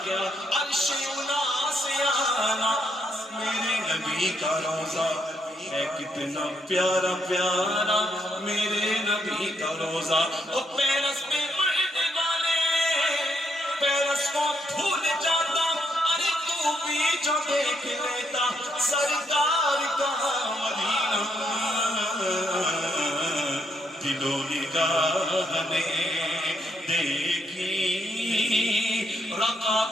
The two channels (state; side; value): normal; both; correlation 0.76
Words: کیا. عرش اولا سے آنا میرے نبی کا روزہ ہے کتنا پیارا پیارا میرے نبی کا روزہ. وہ پیرس میں مرنے والے پیرس کو بھول جاتا. ارے تو بھی جو دیکھ لیتا سرکار کا مدینہ. دل و نگاہ نے دیکھی